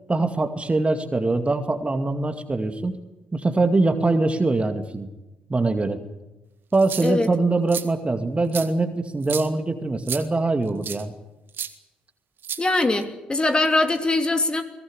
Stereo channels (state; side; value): normal; both; correlation 0.86